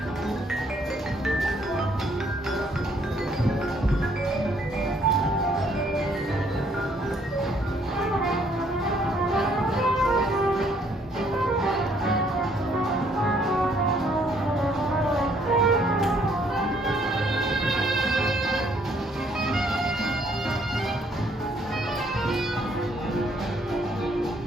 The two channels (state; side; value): normal; both; correlation 0.66